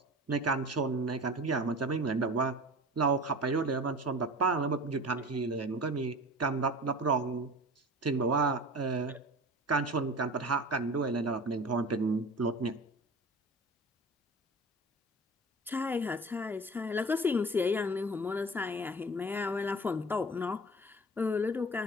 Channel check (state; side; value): normal; both; correlation 0.37